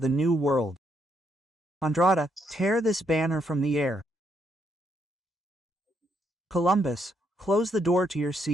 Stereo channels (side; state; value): both; normal; correlation 0.75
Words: the new world. Andrada, tear this banner from the air. Columbus, close the door to your